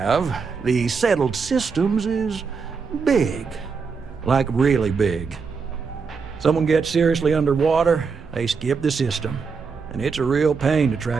the settled systems is big. Like really big. Someone gets seriously underwater, they skip the system. And it's a real pain to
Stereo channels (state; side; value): quieter; left; 5.3 dB